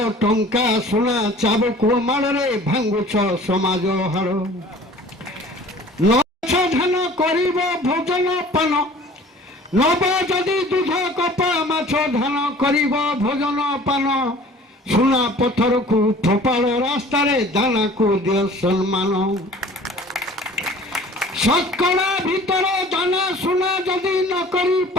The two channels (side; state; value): both; normal; correlation 0.48